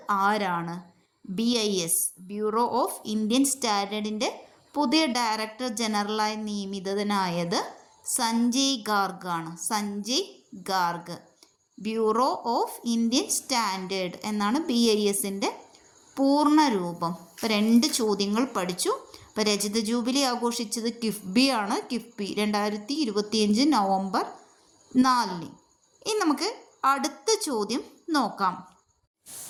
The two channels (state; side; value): identical; both; correlation 1.00